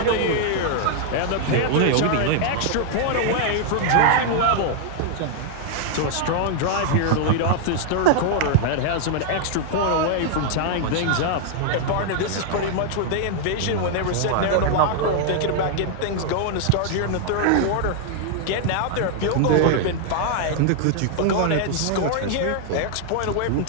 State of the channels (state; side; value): different; both; correlation 0.00